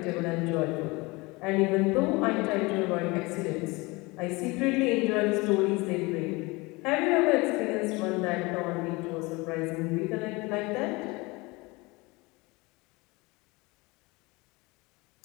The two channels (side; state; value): right; quieter; 24.4 dB